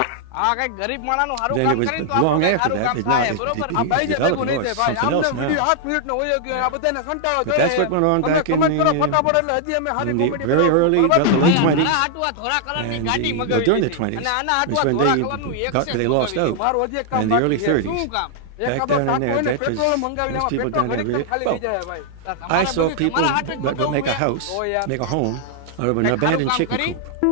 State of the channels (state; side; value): different; both; correlation -0.01